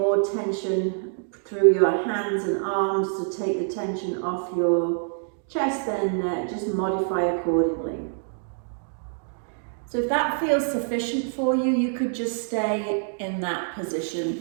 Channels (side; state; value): left; silent; digital silence